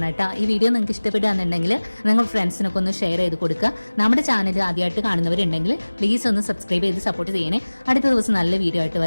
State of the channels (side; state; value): both; inverted; correlation -1.00